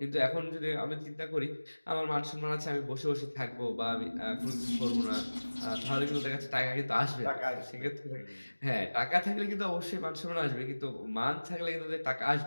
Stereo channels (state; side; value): inverted; both; correlation -1.00